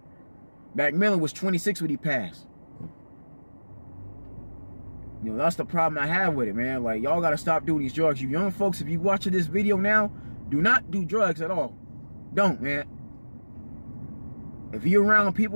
Mack Miller was 26 when he passed. You know, that's the problem I have with it, man. Like, y'all got to stop doing these drugs. You young folks, if you watching this video now, do not do drugs at all. Don't, man. If you're around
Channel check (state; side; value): inverted; both; correlation -1.00